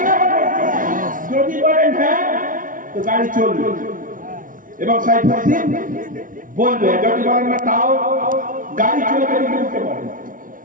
যদি বলেন হ্যাঁ তো গাড়ি চলবে, এবং সাইফুদ্দিন বলবে, যদি বলেন না তাও গাড়ি চলবে, কিন্তু উঠতে পারে।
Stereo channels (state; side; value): late; left; 0.39 ms